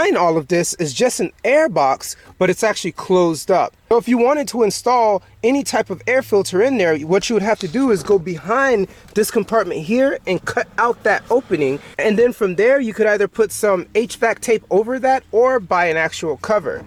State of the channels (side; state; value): both; identical; correlation 1.00